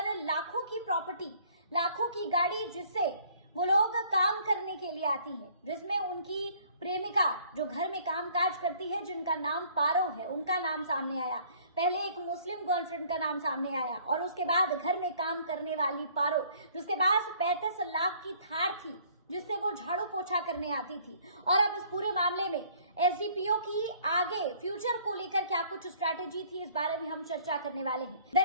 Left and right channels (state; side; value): inverted; both; correlation -0.58